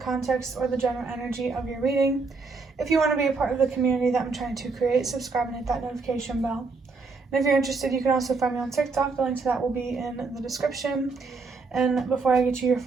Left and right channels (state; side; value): quieter; left; 4.2 dB